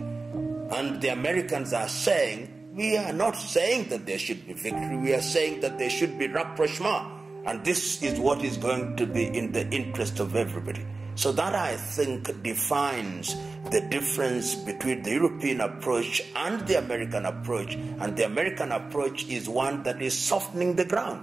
And the Americans are saying, we are not saying that there should be victory, we are saying that there should be rapprochement. And this is what is going to be in the interest of everybody. So that, I think, defines the difference between the European approach and the American approach. And the American approach is one that is softening the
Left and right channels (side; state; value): left; quieter; 3.6 dB